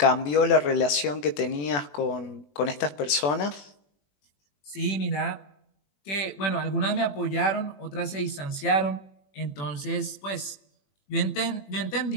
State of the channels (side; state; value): right; late; 21 ms